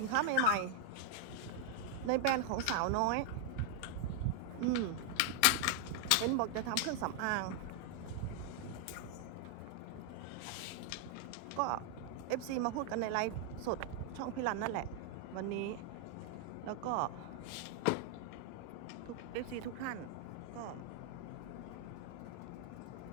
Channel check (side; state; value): both; different; correlation 0.00